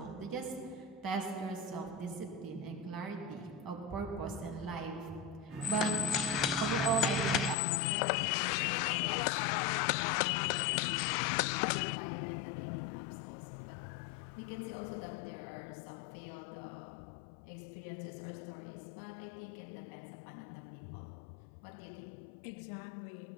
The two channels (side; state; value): right; drops out; at 7.6 s